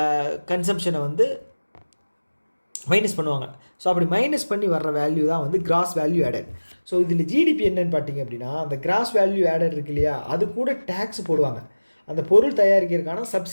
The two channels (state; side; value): inverted; both; correlation -1.00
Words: கன்சம்ஷனை வந்து மைனஸ் பண்ணுவாங்க. ஸோ அப்படி மைனஸ் பண்ணி வர்ற வேல்யூ தான் வந்து கிராஸ் வேல்யூ ஆடட். ஸோ இதில் ஜிடிபி என்னன்னு பார்த்தீங்க அப்படின்னா அந்த கிராஸ் வேல்யூ ஆடட் இருக்கு இல்லையா? அது கூட டேக்ஸ் போடுவாங்க. அந்த பொருள் தயாரிக்கிறதுக்கான